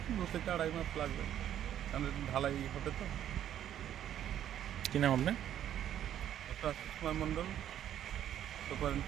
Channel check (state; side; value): quieter; left; 10.8 dB